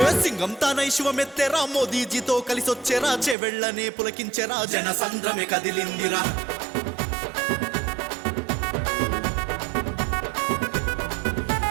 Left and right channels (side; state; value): left; drops out; at 3.4 s